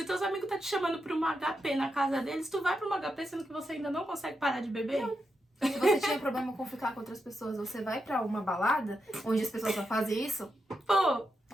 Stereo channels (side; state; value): both; normal; correlation 0.86